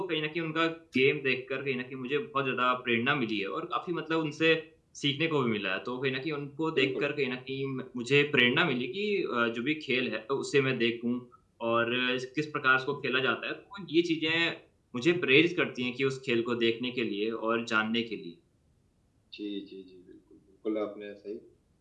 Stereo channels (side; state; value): both; identical; correlation 1.00